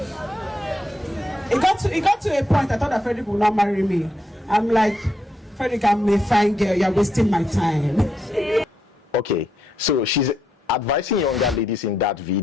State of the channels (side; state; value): both; normal; correlation 0.80